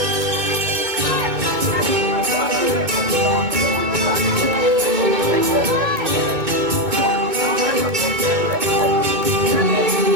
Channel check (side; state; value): left; late; 2.2 ms